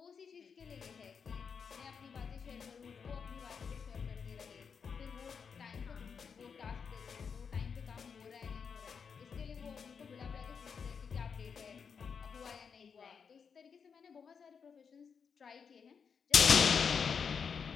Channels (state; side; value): quieter; right; 6.3 dB